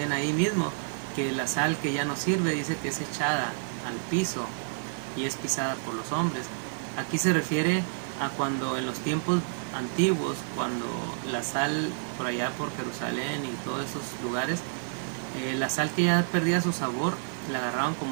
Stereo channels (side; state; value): left; silent; digital silence